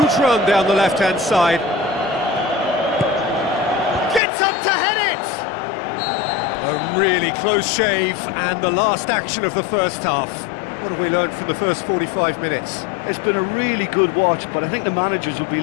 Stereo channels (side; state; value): right; drops out; at 4.2 s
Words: run down the left-hand side. Gets up to head it! A really close shave, and the last action of the first half. What have we learned from the first 45 minutes? It's been a really good watch, but I think the managers will be